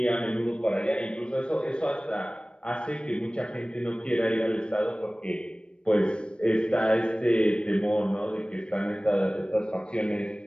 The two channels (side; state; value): right; late; 0.056 ms